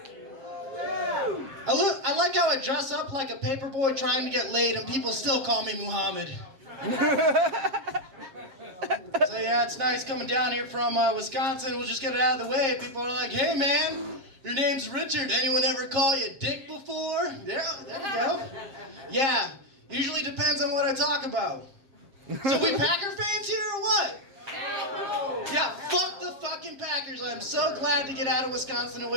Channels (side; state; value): left; late; 7.5 ms